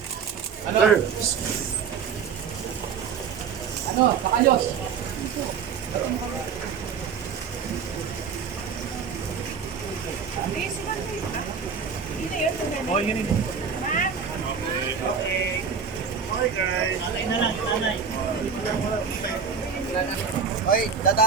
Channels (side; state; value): left; quieter; 6.3 dB